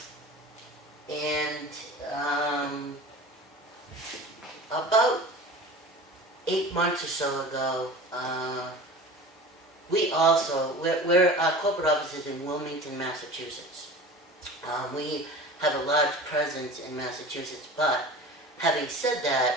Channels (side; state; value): both; normal; correlation 0.37